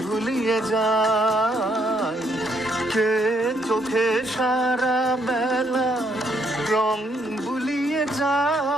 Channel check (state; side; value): normal; both; correlation 0.72